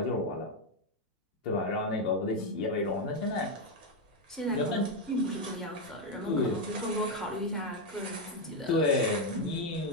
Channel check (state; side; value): normal; both; correlation 0.04